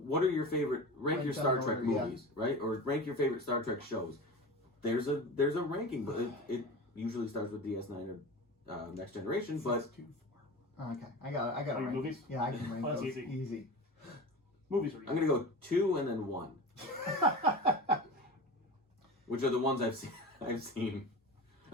are your favorite... Rank your Star Trek movies, right? Or rank your favorite Star Trek shows. There's a ranking, but it usually starts with DS9 or Next Generation, but... 6, 2, 4. Okay, I got to rank movies? Yeah, I can rank that's those. easy. Movies are easy. I'm going to go 2 and then 1. Which are the ones I've seen. I'm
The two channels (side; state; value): both; normal; correlation 0.30